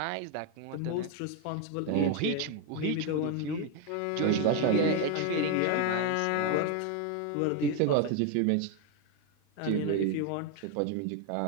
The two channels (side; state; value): both; different; correlation 0.01